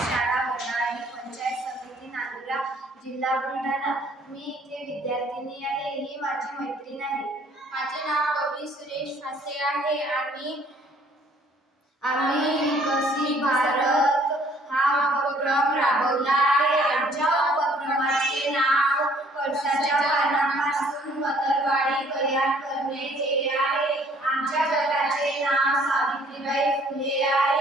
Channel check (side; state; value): both; normal; correlation 0.60